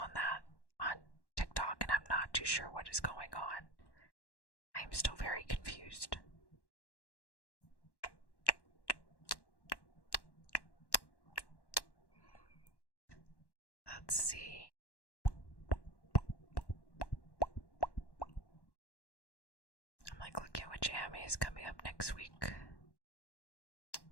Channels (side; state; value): right; late; 1.1 ms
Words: that on TikTok, and I'm not too sure what is going on. I'm still very confused. Let's see. I'm like looking at which anime is coming up next week.